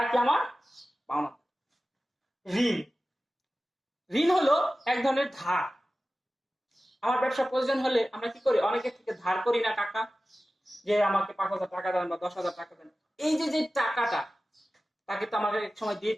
কি আমার পাওনাদার। ঋণ, ঋণ হলো এক ধরনের ধার। আমার ব্যবসা প্রয়োজন হলে আমরা কি করি? অনেকের থেকে ধার করি না টাকা, যে আমাকে 5,000 টাকা দেন বা 10,000 টাকা দেন। এই যে টাকাটা তাকে তো আমাকে এক সময় দিয়ে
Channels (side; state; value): both; normal; correlation 0.95